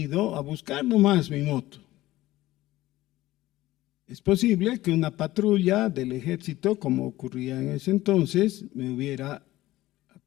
a buscar nomás mi moto? Es posible que una patrulla del ejército, como ocurría en ese entonces, me hubiera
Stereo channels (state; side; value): quieter; right; 16.6 dB